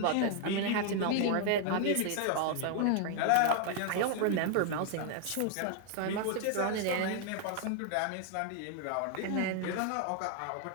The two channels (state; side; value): different; both; correlation 0.00